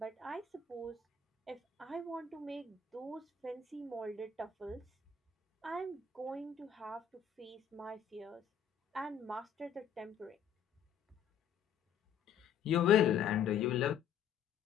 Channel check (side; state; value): right; quieter; 7.3 dB